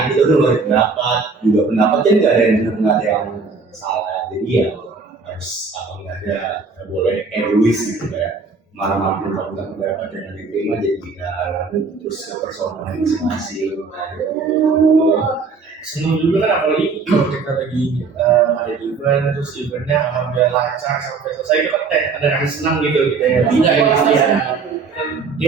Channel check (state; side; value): quieter; left; 4.7 dB